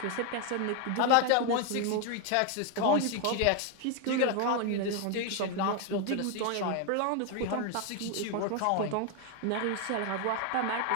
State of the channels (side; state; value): both; different; correlation 0.01